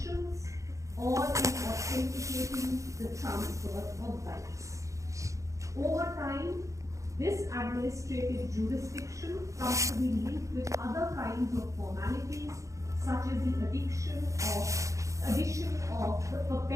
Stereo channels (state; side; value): late; left; 0.15 ms